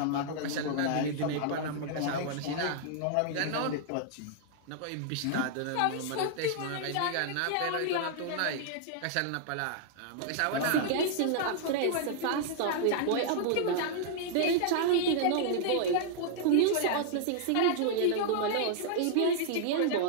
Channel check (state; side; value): different; both; correlation -0.01